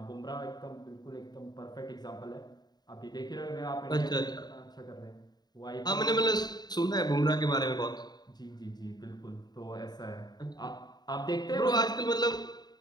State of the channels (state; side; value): late; right; 0.20 ms